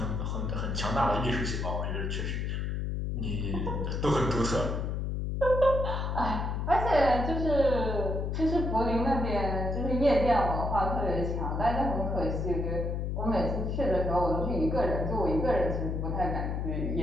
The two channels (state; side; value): noise; left; hum, 1 dB below the sound